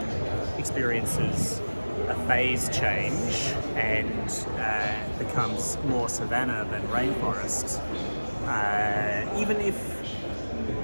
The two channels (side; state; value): both; inverted; correlation -1.00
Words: experiences a phase change and becomes more savanna than rainforest, even if